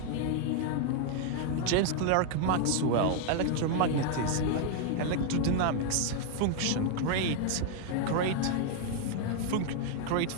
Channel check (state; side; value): different; both; correlation 0.00